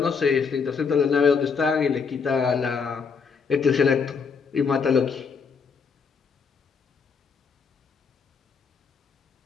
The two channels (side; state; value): right; quieter; 5.6 dB